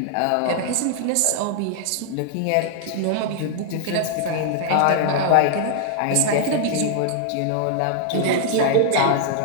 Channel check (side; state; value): both; different; correlation -0.01